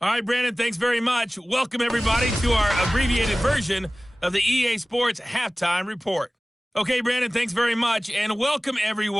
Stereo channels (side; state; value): both; normal; correlation 0.98